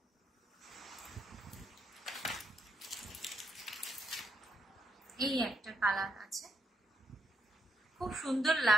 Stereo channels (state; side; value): normal; both; correlation 0.79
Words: এই একটা কালার আছে, খুব সুন্দর